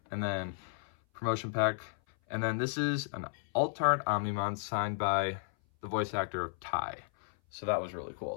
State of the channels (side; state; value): right; silent; 55 dB below the other